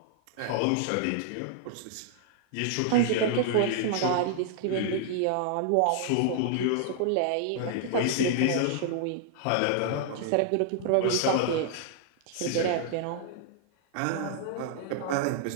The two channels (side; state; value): both; different; correlation -0.01